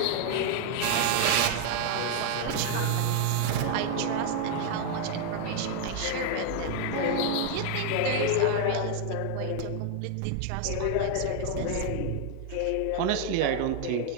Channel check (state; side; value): different; both; correlation 0.00